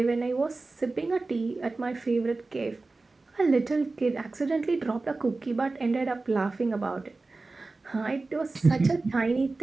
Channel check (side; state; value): left; quieter; 3.5 dB